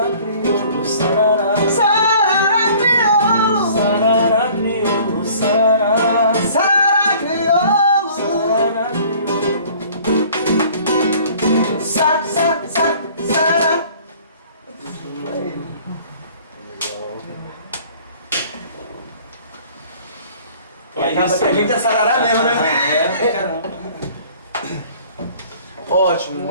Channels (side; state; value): both; inverted; correlation -0.51